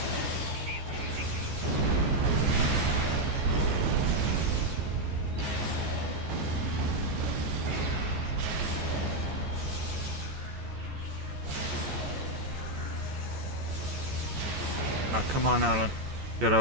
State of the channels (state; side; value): late; left; 14 ms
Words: Ah, come on, Alan. Get